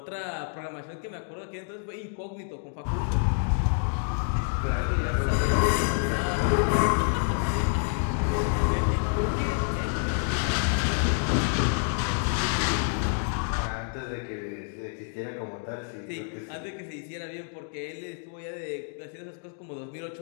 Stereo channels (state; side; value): silent; right; 59 dB below the other